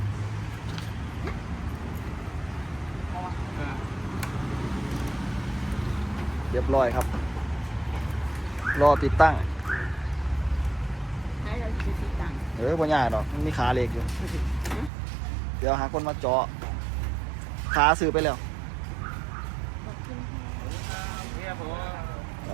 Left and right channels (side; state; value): left; drops out; at 14.9 s